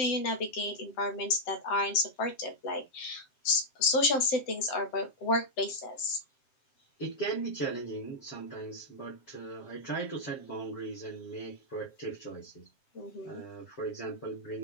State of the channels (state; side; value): late; right; 7.5 ms